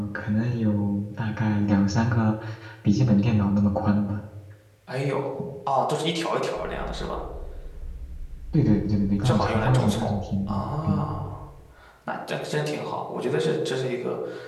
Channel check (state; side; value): identical; both; correlation 1.00